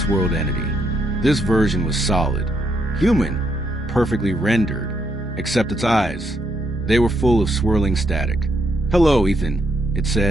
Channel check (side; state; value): both; normal; correlation 0.76